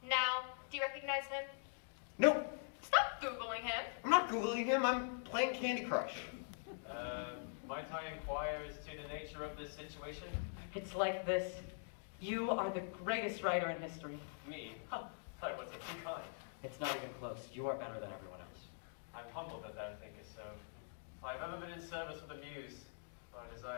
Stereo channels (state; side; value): silent; right; digital silence